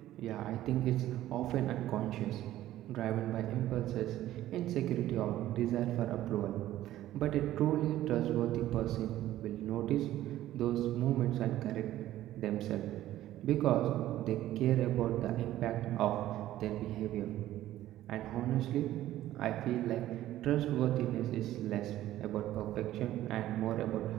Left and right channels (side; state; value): left; quieter; 14.0 dB